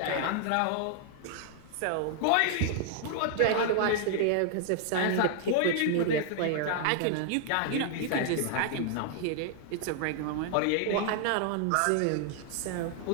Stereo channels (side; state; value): both; different; correlation 0.00